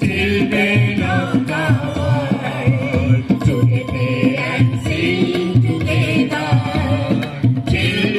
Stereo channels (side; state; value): both; identical; correlation 1.00